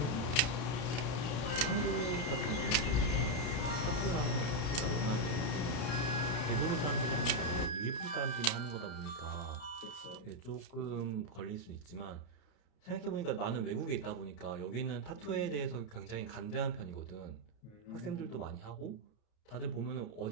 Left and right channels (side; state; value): right; late; 33 ms